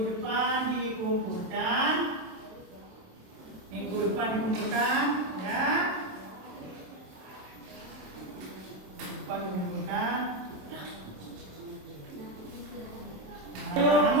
depan dikumpulkan. Minggu depan dikumpulkan, ya. Minggu depan dikumpulkan. Ayo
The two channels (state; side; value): late; left; 27 ms